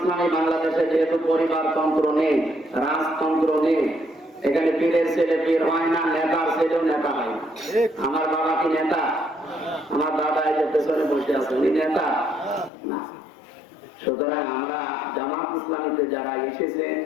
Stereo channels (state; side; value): drops out; right; at 12.7 s